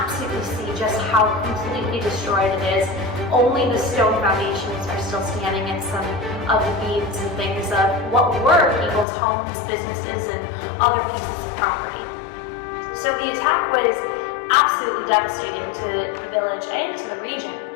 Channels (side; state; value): right; drops out; at 9.1 s